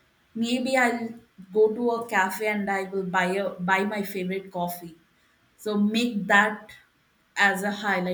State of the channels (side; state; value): both; identical; correlation 1.00